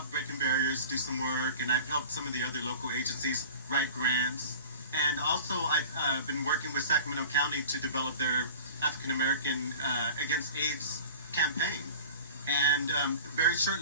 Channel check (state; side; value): inverted; both; correlation -0.40